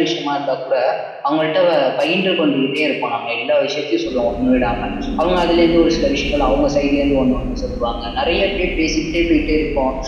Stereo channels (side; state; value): both; identical; correlation 1.00